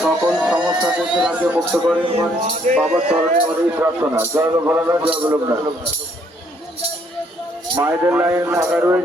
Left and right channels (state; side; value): normal; both; correlation 0.67